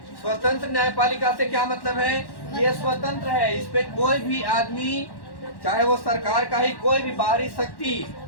स्वतंत्र न्यायपालिका से क्या मतलब है? ये स्वतंत्र है, इस पे कोई भी आदमी, चाहे वो सरकार का ही कोई भी बाहरी शक्ति,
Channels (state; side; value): late; right; 1.1 ms